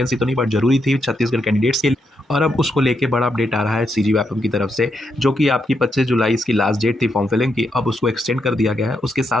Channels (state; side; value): normal; both; correlation 0.81